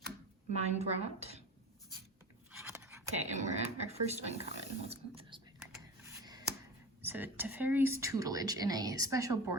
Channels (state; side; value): normal; both; correlation 0.31